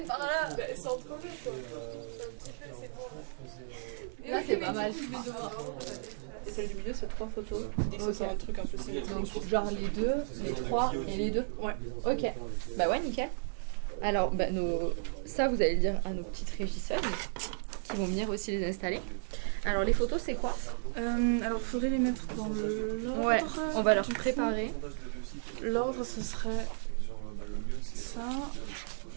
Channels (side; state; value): left; silent; digital silence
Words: par là. C'est entre eux, quoi. Là, c'est pas mal. Et celle du milieu, c'est 3 photos. C'est un truc un peu Donc, genre les deux, les trois et les deux. Ouais. Ok. Bah ouais, nickel. Alors, bah, ça, vous allez le dire à nos petites régisseuses qui vont venir aussi les installer. Alors, les photos, c'est quoi? Alors, il faudrait les mettre dans l'ordre. Ouais, on va leur préparer. L'ordre, ce serait Genre, le mieux, c'est. ça.